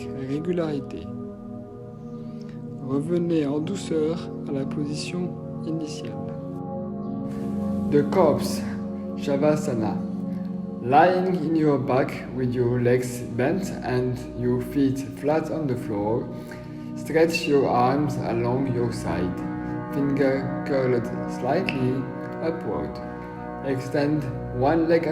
régularité. Revenez en douceur à la position initiale. The Corpse, Shavasana. Lying in your back with your legs bent and your feet flat on the floor, stretch your arms along your side, finger curled slightly upward. Extend one leg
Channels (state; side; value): identical; both; correlation 1.00